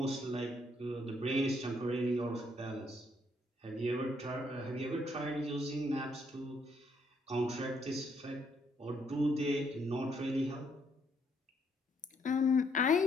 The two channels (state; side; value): normal; both; correlation 0.71